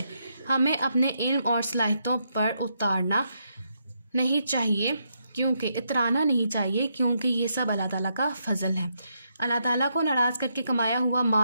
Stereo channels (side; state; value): both; inverted; correlation -0.79